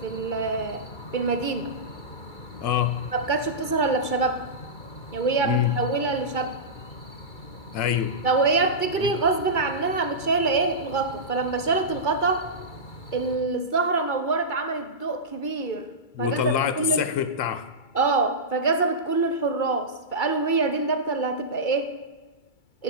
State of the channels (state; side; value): late; right; 2.3 ms